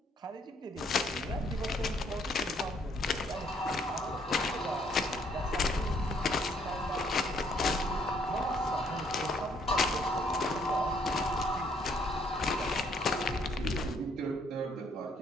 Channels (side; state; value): both; normal; correlation 0.67